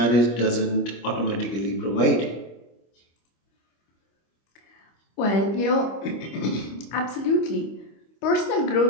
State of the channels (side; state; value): right; late; 25 ms